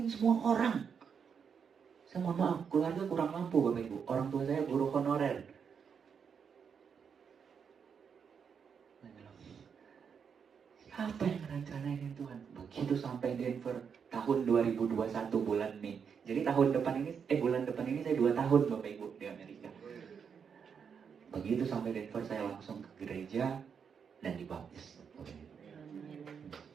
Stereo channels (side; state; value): left; quieter; 6.8 dB